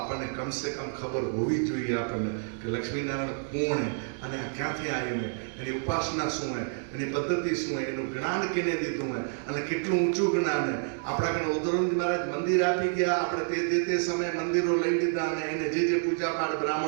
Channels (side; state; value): left; silent; 59 dB below the other